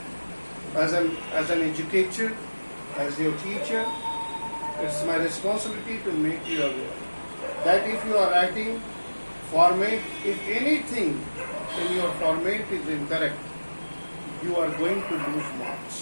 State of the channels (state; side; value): inverted; both; correlation -1.00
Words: As an educator, as your teacher, it's my responsibility to make you aware that if you are writing format, if anything in your format is incorrect, you are going to lose